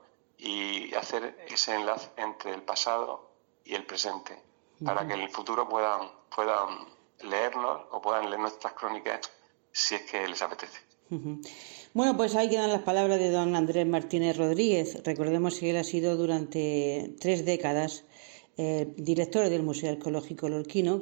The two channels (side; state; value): left; silent; digital silence